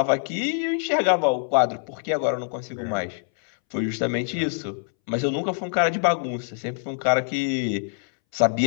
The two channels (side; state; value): right; silent; 62 dB below the other